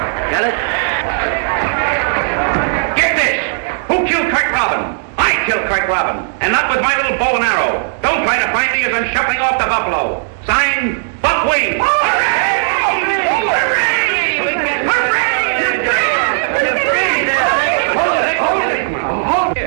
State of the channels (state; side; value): silent; left; digital silence